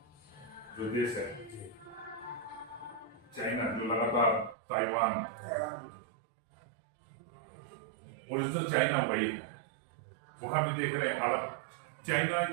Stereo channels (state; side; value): drops out; left; at 4.5 s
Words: जो देश है चाइना, जो लगातार ताइवान, ओरिजिनल चाइना वही है, वहां भी देख रहे हैं हालत। चाइना